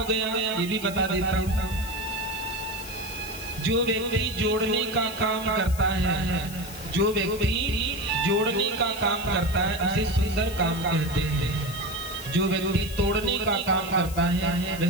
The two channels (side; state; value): left; noise; hiss, 14 dB below the sound